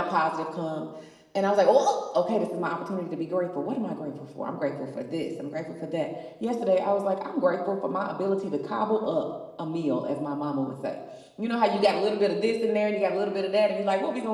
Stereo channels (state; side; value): identical; both; correlation 1.00